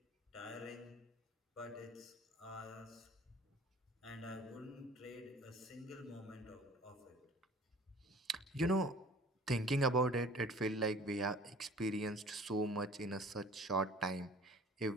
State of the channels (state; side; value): normal; both; correlation 0.48